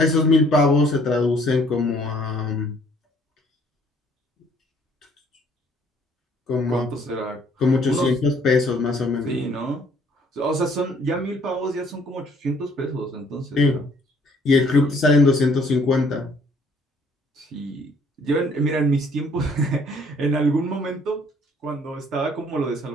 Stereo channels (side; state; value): both; normal; correlation 0.61